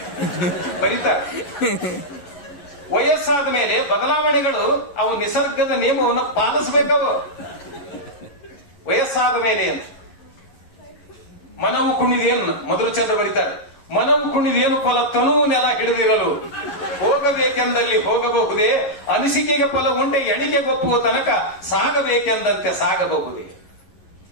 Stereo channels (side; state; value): right; late; 11 ms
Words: ಬರೀತಾರ. ವಯಸ್ಸಾದ ಮೇಲೆ ಬದಲಾವಣೆಗಳು ಅವು ನಿಸರ್ಗದ ನಿಯಮವನ್ನು ಪಾಲಿಸಬೇಕವು. ವಯಸ್ಸಾದ ಮೇಲೆ ಅಂತ ಮನವು ಕುಣಿದೇನು ಮಧುರಚಂದ್ರ ಬರೀತಾರೆ. ಮನವು ಕುಣಿದೇನು ಫಲ ತನು ನೆಲ ಹಿಡಿದಿರಲು ಹೋಗಬೇಕೆಂದಲ್ಲಿ ಹೋಗಬಹುದೇ, ಅನಿಸಿಕೆಗೆ ಫಲ ಉಂಟೆ ಎಣಿಕೆಗೊಪ್ಪುವ ತನಕ ಸಾಗಬೇಕೆಂದಂತೆ ಸಾಗಬಹುದೇ.